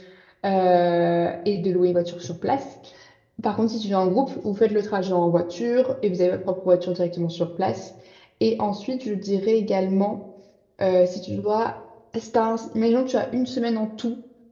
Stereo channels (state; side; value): identical; both; correlation 1.00